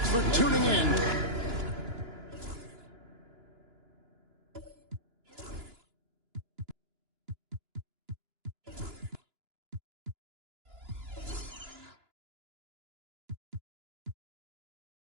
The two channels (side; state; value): left; late; 2.9 ms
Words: for tuning in.